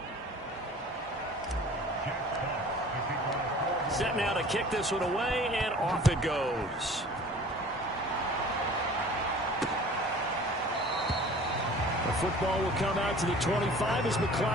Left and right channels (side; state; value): both; normal; correlation 0.46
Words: Set now to kick this one away, and off it goes. The football will come out to the 25 as